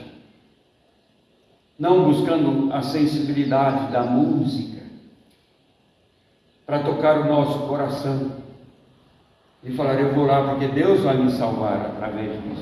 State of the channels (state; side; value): identical; both; correlation 1.00